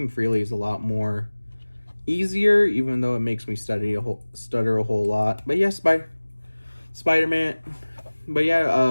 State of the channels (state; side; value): inverted; both; correlation -1.00